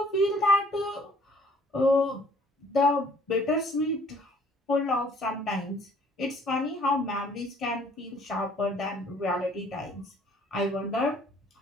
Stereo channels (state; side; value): normal; both; correlation 0.58